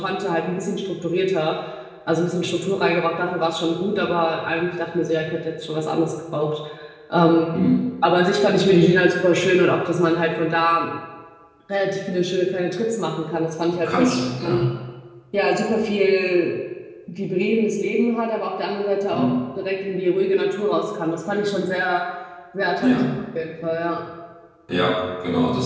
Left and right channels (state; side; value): identical; both; correlation 1.00